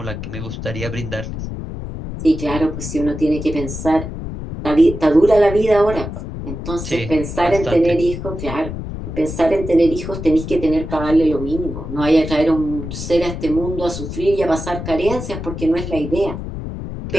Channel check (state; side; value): noise; left; rumble, 7 dB below the sound